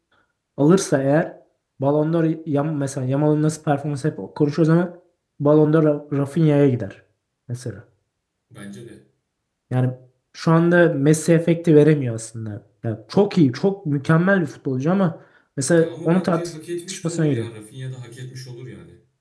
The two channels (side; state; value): both; identical; correlation 1.00